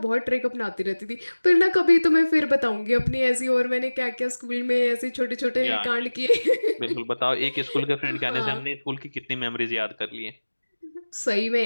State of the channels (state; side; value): inverted; both; correlation -1.00